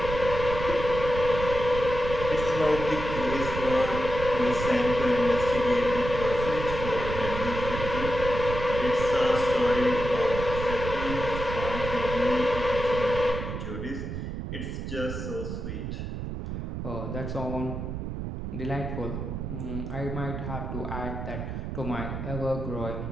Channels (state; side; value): noise; right; rumble, 5 dB below the sound